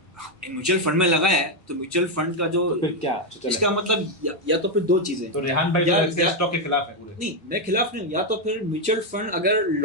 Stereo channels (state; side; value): normal; both; correlation 0.04